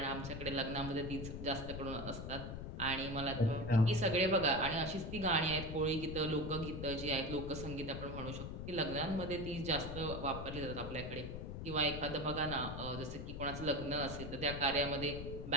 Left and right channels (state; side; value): noise; left; rumble, 7 dB below the sound